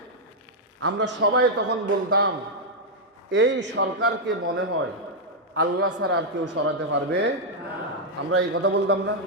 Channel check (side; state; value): both; normal; correlation -0.03